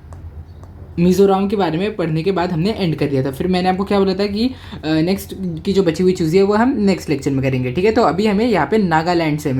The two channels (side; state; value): both; identical; correlation 1.00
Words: मिज़ोरम के बारे में पढ़ने के बाद हमने एंड कर दिया था। फिर मैंने आपको क्या बोला था कि नेक्स्ट की जो बची हुई चीज़ें है वो हम नेक्स्ट लेक्चर में करेंगे। ठीक है, तो अभी हमें यहाँ पे नागालैंड से